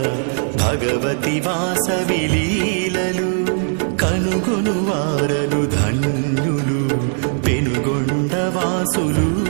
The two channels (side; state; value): left; silent; 67 dB below the other